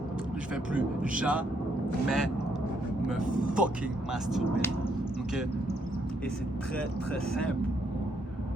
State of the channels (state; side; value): normal; both; correlation 0.73